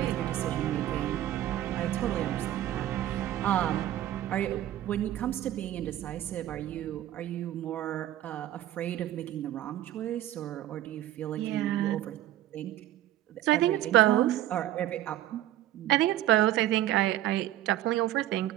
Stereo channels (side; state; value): left; quieter; 13.5 dB